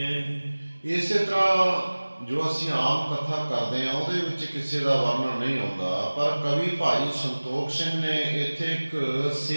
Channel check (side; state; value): both; inverted; correlation -1.00